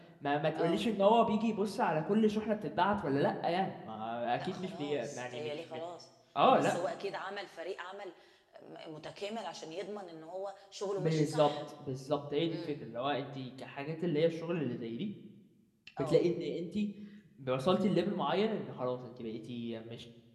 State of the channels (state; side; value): identical; both; correlation 1.00